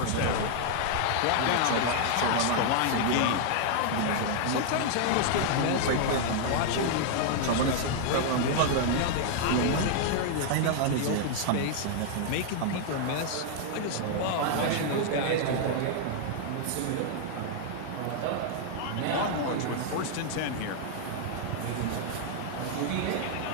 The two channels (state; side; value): different; both; correlation 0.00